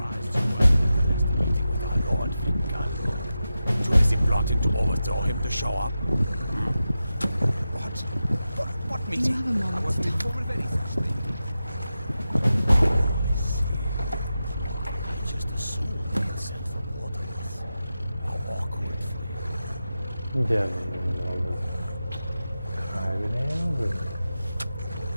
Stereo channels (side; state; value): both; inverted; correlation -0.92